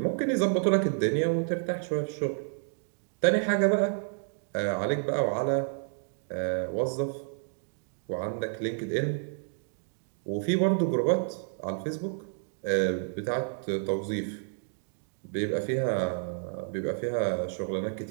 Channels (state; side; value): silent; left; digital silence